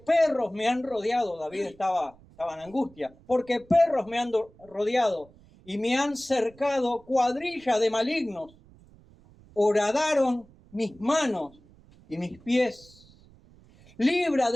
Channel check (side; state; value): right; noise; rumble, 26 dB below the sound